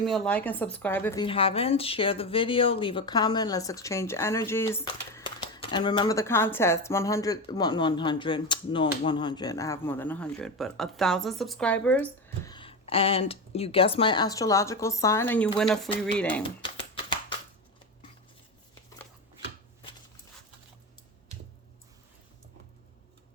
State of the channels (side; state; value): both; normal; correlation 0.19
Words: me a like and subscribe if you haven't. Share the video, leave a comment, let's exchange energies. And remember the contest, 100, I have more than 100, but 1,000 subscribers. And you guess my astrological sign and you win a free reading.